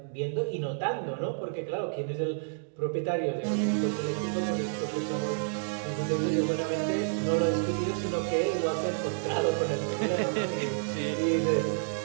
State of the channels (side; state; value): left; silent; digital silence